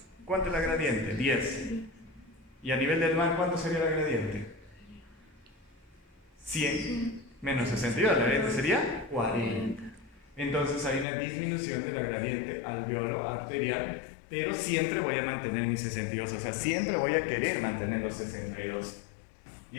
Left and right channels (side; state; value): right; drops out; at 11.1 s